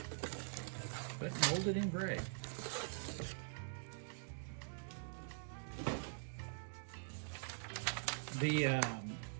but molded in gray. The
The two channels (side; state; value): left; silent; digital silence